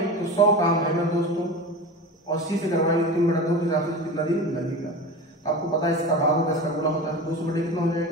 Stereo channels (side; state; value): both; normal; correlation 0.30